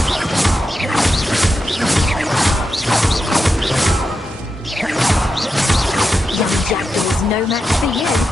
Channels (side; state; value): both; normal; correlation 0.88